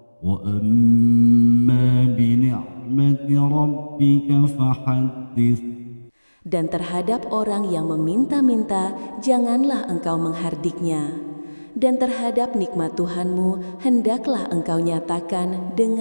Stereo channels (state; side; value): inverted; both; correlation -1.00